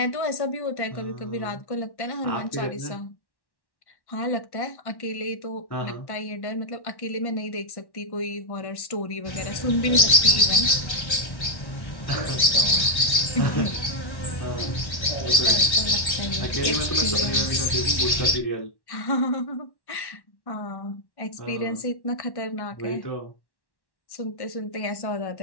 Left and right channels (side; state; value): right; late; 1.1 ms